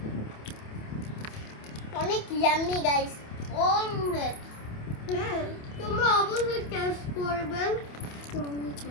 অনেক ইয়াম্মি গাইস। অনেক। তোমরা অবশ্যই টেস্ট করবে।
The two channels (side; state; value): right; late; 28 ms